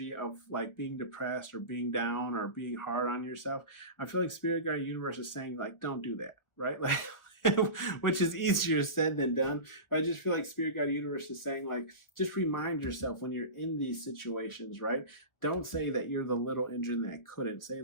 of like being depressed or being down or being hard on yourself, I feel like Spirit Guide Universe is saying, like, don't do that, right? Like, which is easier said than done. But I just feel like Spirit Guide Universe is saying, like, just remind yourself when you're in these situations, right? Don't say that you're the little engine that couldn't. Say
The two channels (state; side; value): late; right; 1.4 ms